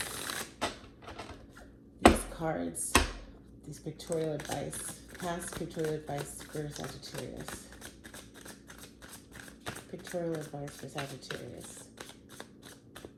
These cards, these pictorial advice, past pictorial advice for Sagittarius. Pictorial advice for Sagittarius.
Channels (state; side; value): identical; both; correlation 1.00